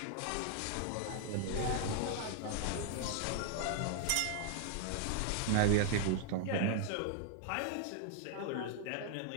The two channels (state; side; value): different; both; correlation 0.00